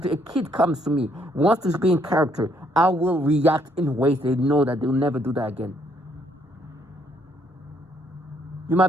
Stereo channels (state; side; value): normal; both; correlation 0.69